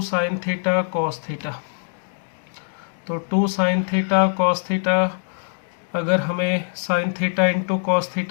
sin थीटा cos थीटा। तो 2 sin थीटा cos थीटा, अगर हमें sin theta into cos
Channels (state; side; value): silent; right; digital silence